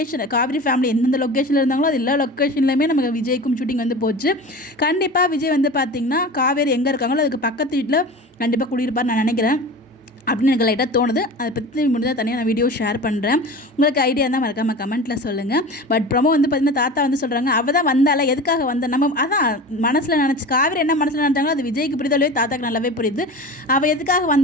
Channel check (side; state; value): both; normal; correlation 0.34